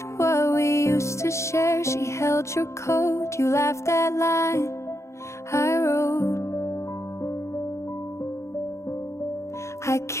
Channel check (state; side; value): late; right; 0.14 ms